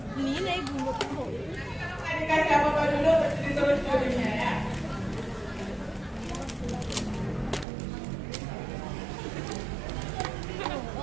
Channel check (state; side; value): drops out; left; at 7.7 s